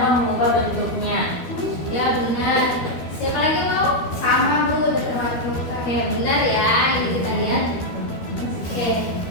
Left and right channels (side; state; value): right; late; 12 ms